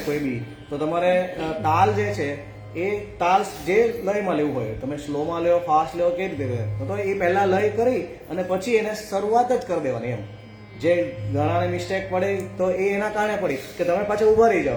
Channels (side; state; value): both; identical; correlation 1.00